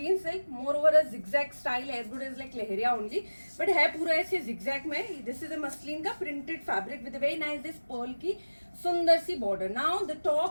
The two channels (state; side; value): inverted; both; correlation -1.00